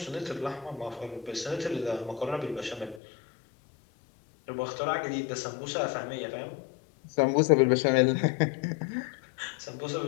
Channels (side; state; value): right; drops out; at 3.0 s